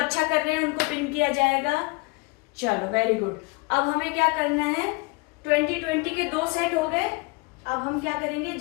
कर रहे हैं उनको पिन किया जाएगा। चलो, वेरी गुड। अब हमें क्या करना है, 20 के 2 सेट हो गए। अब हम क्या करेंगे,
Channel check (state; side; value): quieter; right; 27.0 dB